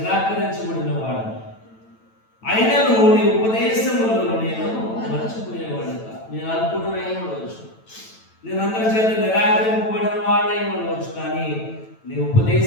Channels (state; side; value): late; right; 9.0 ms